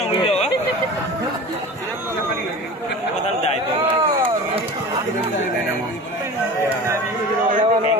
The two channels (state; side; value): normal; both; correlation 0.36